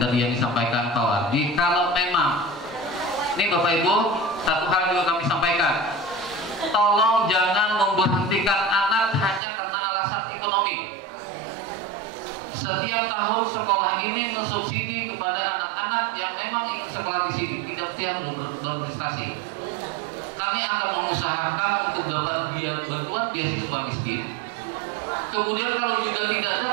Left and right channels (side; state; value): left; drops out; at 9.4 s